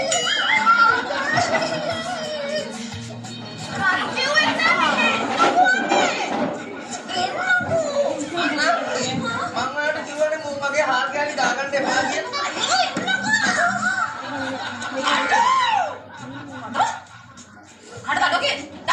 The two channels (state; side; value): identical; both; correlation 1.00